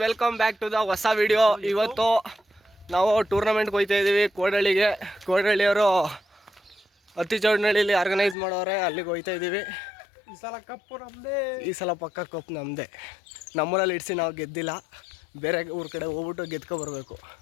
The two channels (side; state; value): right; drops out; at 8.3 s